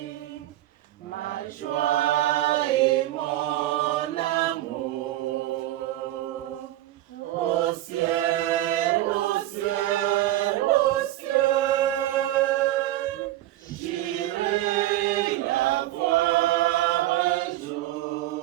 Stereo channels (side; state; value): left; quieter; 14.9 dB